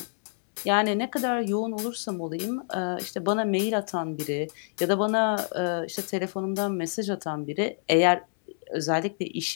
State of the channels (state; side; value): silent; right; 60 dB below the other